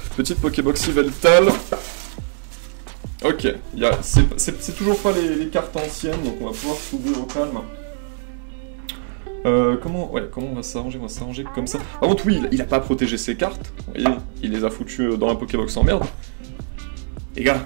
Petite Pokébox Yveltal. Ok, c'est toujours pas les cartes anciennes, donc on va pouvoir s'ouvrir au calme. Comment on va s'arranger? On va s'arranger comme ça. Par contre, oui, il a pas protégé ses cartes. Vous voyez, il les a foutues dans la Pokébox en merde. Les gars,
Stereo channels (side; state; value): left; silent; digital silence